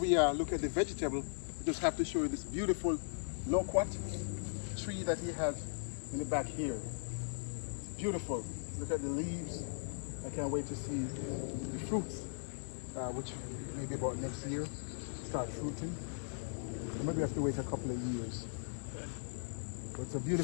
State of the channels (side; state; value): right; silent; digital silence